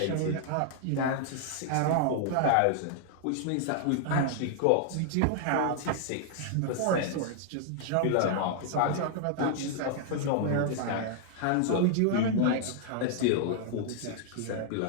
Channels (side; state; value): both; different; correlation 0.00